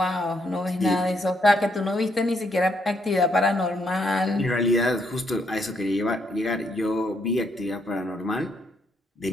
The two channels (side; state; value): both; normal; correlation 0.74